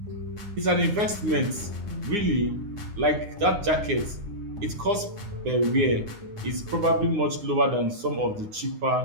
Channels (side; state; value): left; late; 9.7 ms